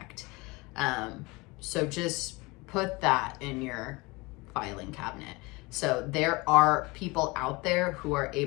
So just put that in your filing cabinet. So there are people out there who are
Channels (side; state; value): right; quieter; 24.5 dB